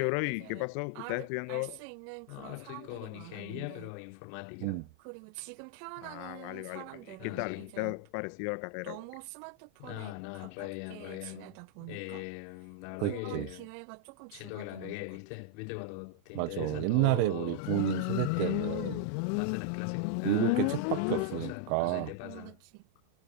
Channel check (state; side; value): different; both; correlation -0.01